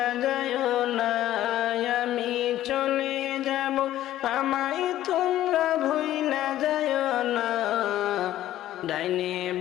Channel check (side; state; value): right; quieter; 13.4 dB